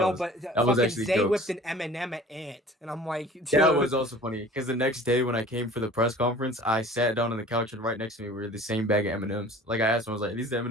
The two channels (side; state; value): both; normal; correlation 0.46